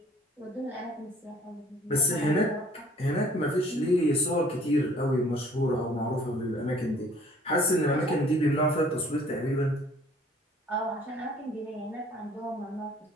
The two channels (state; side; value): normal; both; correlation 0.55